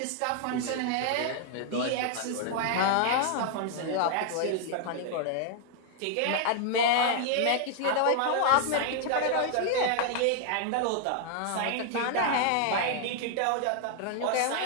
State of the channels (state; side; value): different; both; correlation 0.00